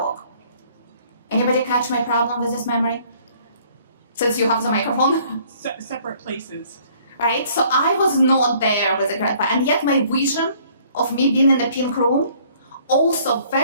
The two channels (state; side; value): inverted; both; correlation -0.58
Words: Anybody catch my problem with this memory? Since you have the microphone? Separate places. Right? So I was not there with the grandpa, and yet my vision of me being in the pink room also